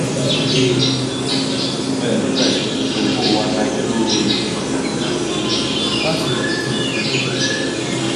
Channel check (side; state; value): both; identical; correlation 1.00